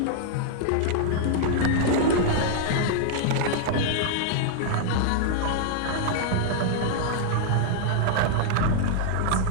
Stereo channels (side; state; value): both; different; correlation -0.01